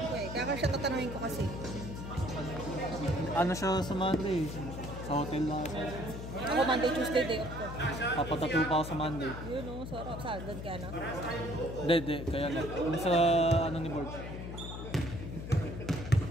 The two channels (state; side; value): noise; left; hum, 8 dB below the sound